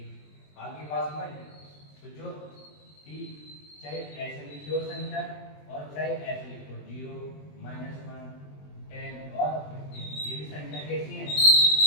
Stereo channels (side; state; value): right; late; 20 ms